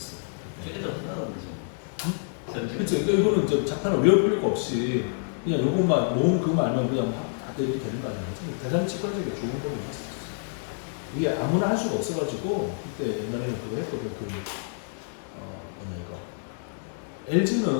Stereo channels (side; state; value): right; silent; digital silence